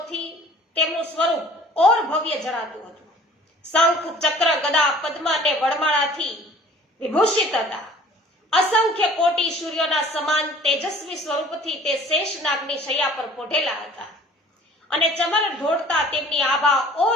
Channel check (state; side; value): normal; both; correlation 0.50